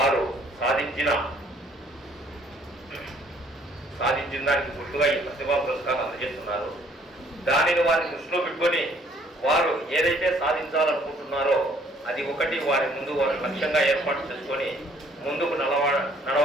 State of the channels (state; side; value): normal; both; correlation 0.61